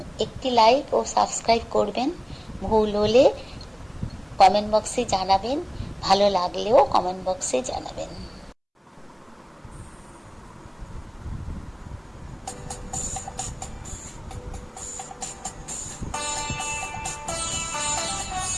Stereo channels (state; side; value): identical; both; correlation 1.00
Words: একটি লাইক ও সাবস্ক্রাইব করবেন। ভুল হলে কমেন্ট বক্সে জানাবেন, ভালো লাগলেও কমেন্ট বক্সে জানাবেন।